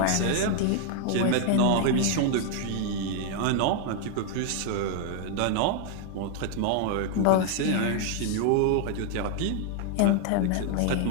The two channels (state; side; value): different; both; correlation 0.00